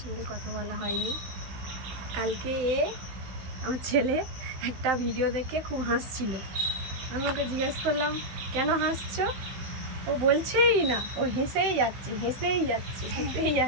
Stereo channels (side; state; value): left; late; 16 ms